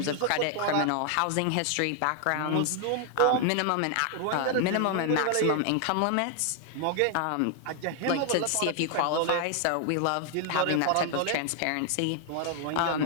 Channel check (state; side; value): different; both; correlation 0.00